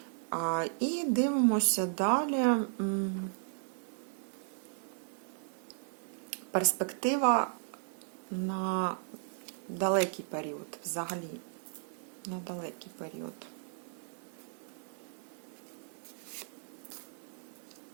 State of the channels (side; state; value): left; silent; digital silence